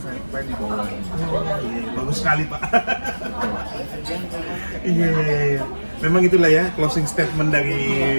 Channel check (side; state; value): both; inverted; correlation -1.00